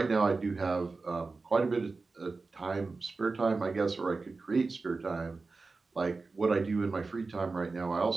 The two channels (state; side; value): quieter; left; 3.9 dB